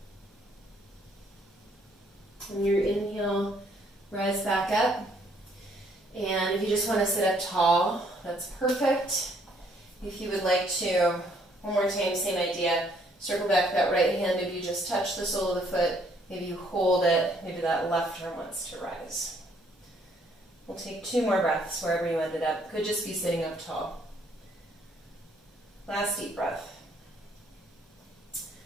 On your inhale, rise back up. And if you just want to sit up tall, that's perfect. If you would like to, one more time, same idea. Circle back that right hand. Maybe you just touch the sole of the foot. Maybe you hold it. Maybe that left arm wants to rise. We'll take 2 more breaths wherever you ended up. Could just be sitting up tall. Last deep breath.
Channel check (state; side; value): normal; both; correlation 0.66